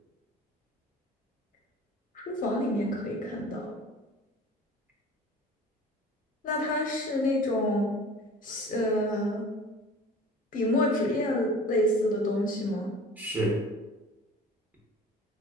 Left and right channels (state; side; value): normal; both; correlation 0.43